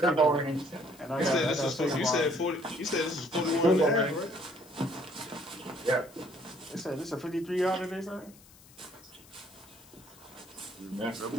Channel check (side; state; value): left; noise; hiss, 24 dB below the sound